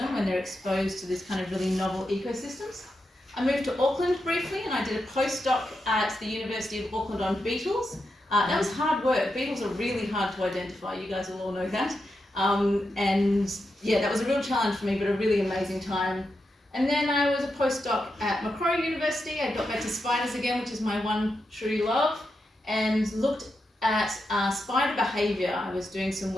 when they're exposed to this kind of really novel ecosystems. I moved to Auckland briefly and I did a postdoc at the University of Auckland on beetles. That was hard work. Beetles are really hard to identify. You guys will all know that. And yeah, that was a real challenge for me, but a really amazing time. And then I was a postdoc at Macquarie University. I got back to spiders again, which is my one true love, and looked at spider behaviour. I was doing some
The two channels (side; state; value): both; normal; correlation 0.86